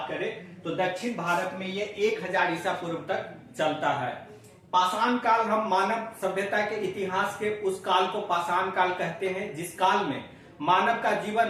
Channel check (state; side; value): identical; both; correlation 1.00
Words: करें तो दक्षिण भारत में ये 1000 ईसा पूर्व तक चलता है। पाषाण काल हम मानव सभ्यता के इतिहास के उस काल को पाषाण काल कहते हैं जिस काल में मानव का जीवन